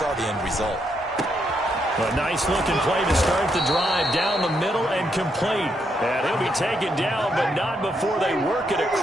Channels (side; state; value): both; normal; correlation 0.78